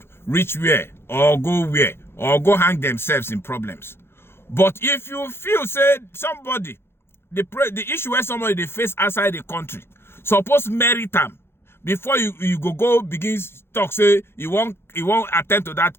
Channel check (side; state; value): right; late; 0.11 ms